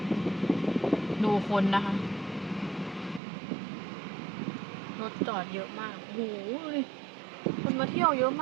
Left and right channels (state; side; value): drops out; left; at 3.2 s